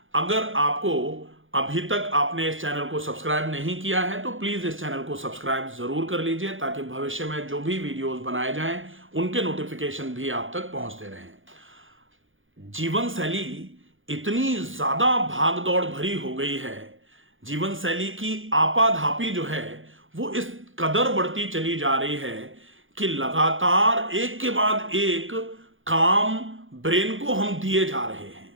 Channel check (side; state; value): left; late; 0.58 ms